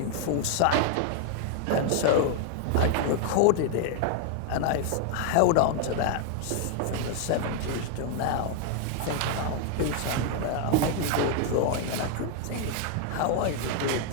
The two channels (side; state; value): both; different; correlation 0.00